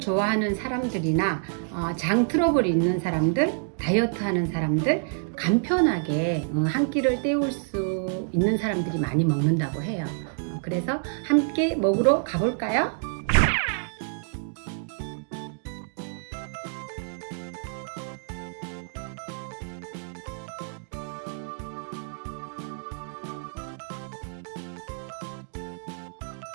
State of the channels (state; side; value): silent; left; digital silence